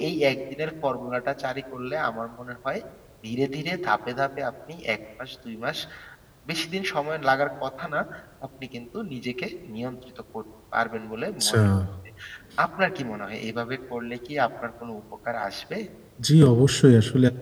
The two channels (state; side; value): identical; both; correlation 1.00